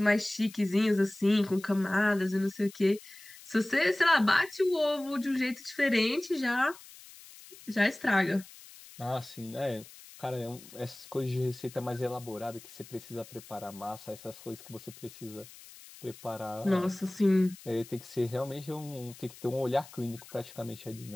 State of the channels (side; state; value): left; noise; hiss, 19 dB below the sound